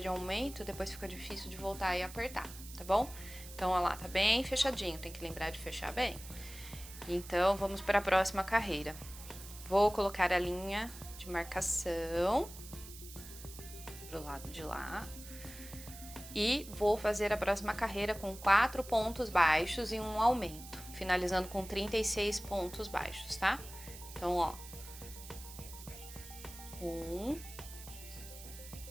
aumento, depois fica difícil de voltar e apertar, tá bom? Então, olha lá, tá bem fechadinho, tem que lembrar de fechar bem. Então, vamos para a próxima carreira. Vou colocar a linha de marcação pro lado de lá. E vou fazer a próxima carreira com 4 pontos baixos e um aumento, finalizando com 36 pontos baixos, tá? Então, ó. 1,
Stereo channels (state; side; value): noise; right; hiss, 15 dB below the sound